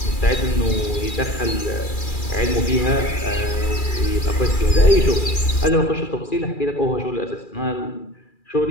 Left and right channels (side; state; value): right; late; 2.4 ms